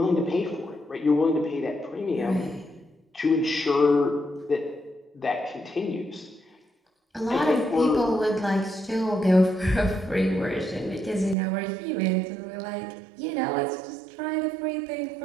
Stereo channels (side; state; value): left; drops out; at 11.4 s